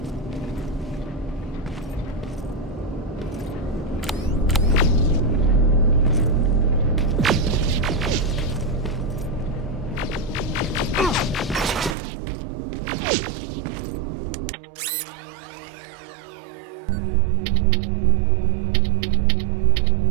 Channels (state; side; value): drops out; left; at 12.0 s